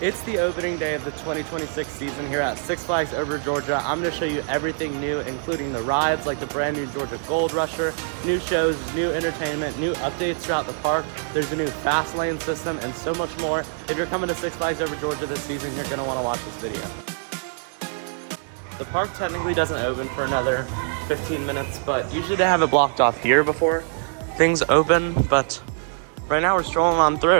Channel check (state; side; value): silent; left; 62 dB below the other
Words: It's the opening day of the 2026 season here at Six Flags Over Georgia. I'm going to show you everything new, including the rides like the brand new Georgia Gold Rusher, new shows, new entertainment, new updates throughout the park. There's a new fast lane system and so much more. If you're coming to Six Flags Over Georgia this season, you're going to want to watch this video. The park technically doesn't open for another 15 minutes, but usually they have it blocked off here before things open, but right now we're strolling on